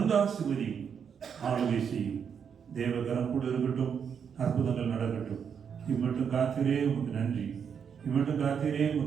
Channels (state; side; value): quieter; left; 7.2 dB